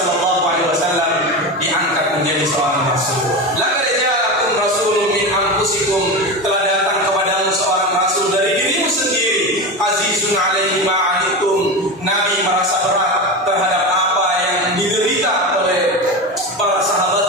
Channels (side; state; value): both; normal; correlation 0.22